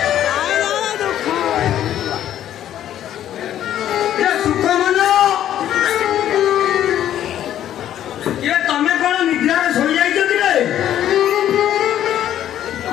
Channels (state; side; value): quieter; right; 11.4 dB